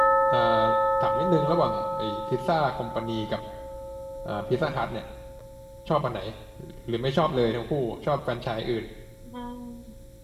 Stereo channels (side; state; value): both; identical; correlation 1.00